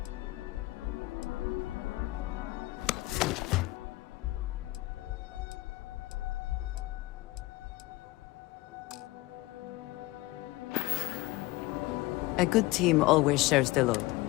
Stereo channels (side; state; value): right; quieter; 19.8 dB